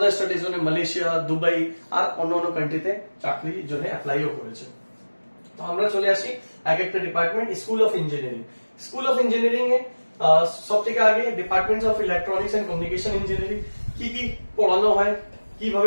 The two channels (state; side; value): inverted; both; correlation -1.00